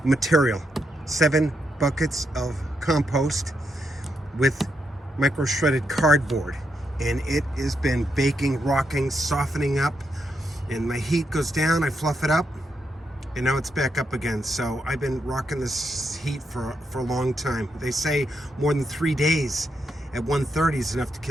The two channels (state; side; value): normal; both; correlation 0.81